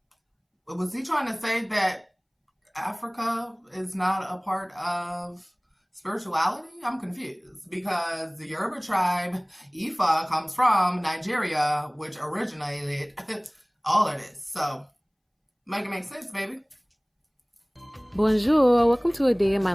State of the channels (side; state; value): both; identical; correlation 1.00